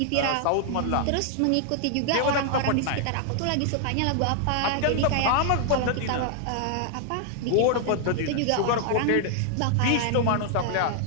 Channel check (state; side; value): different; both; correlation 0.00